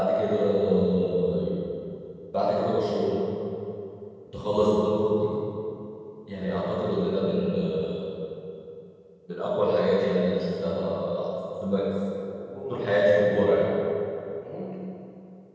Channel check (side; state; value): both; identical; correlation 1.00